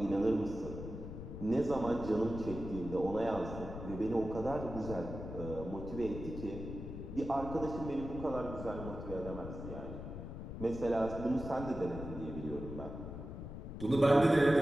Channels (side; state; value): left; noise; rumble, 8 dB below the sound